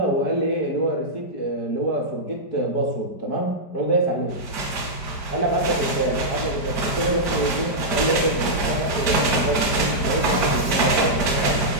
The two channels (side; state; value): right; late; 5.0 ms